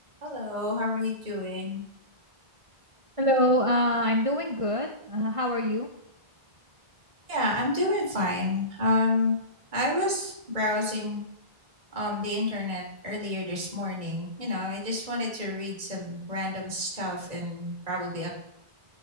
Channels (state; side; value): late; left; 1.6 ms